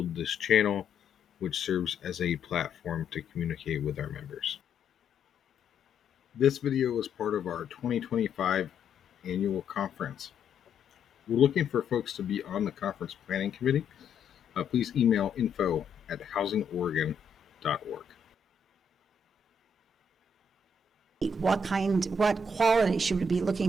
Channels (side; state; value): right; quieter; 4.0 dB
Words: this channel, which serves as a platform to communicate with our members. This video is part of our 2025 annual conference. We're looking for folks to be on the conference planning committee. Please email info@housingoregon.org. What quality should we be